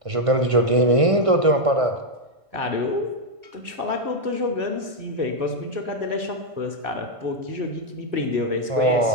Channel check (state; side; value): late; left; 1.5 ms